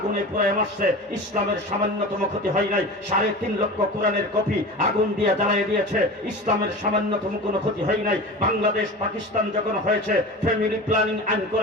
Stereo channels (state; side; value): normal; both; correlation 0.32